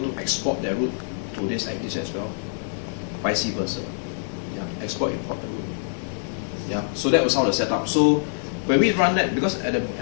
to export their route to this ACDIS as well, vice versa. Yeah, export import the route. Yeah, so that was how the setup. So when we run that, because at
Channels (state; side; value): silent; right; digital silence